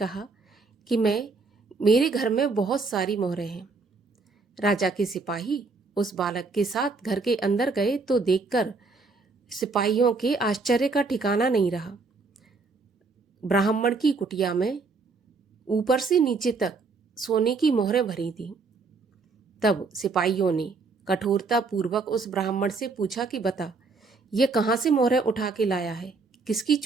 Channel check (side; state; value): left; quieter; 4.2 dB